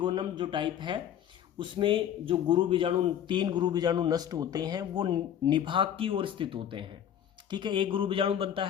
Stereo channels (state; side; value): quieter; right; 9.9 dB